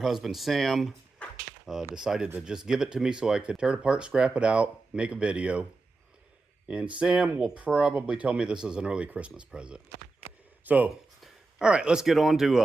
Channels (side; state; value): left; quieter; 3.5 dB